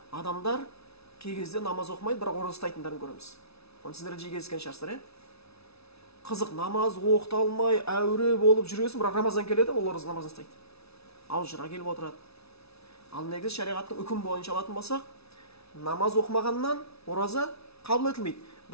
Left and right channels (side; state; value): right; late; 0.79 ms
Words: Адамдар кей кезде намаз оқымайды, бірақ ораза ұстайтындарын көреміз. Оны сіздер жиі кездескен шығарсыздар, қызық, намаз оқыта алмай, әуре болып жүресің, бірақ Рамазан келеді, ол ораза намазын ұстайды. Алжыра келіп отырады. Ал негізі шариғаттың үкім бойынша алатын болсақ, намаз оқымағаннан ораза қабыл етілмейді.